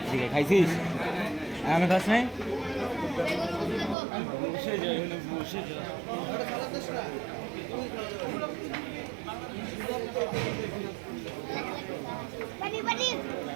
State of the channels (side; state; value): left; drops out; at 4.0 s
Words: ঠিক আছে খাইছিস আমি খাস নাই বসে যাই বসে যাই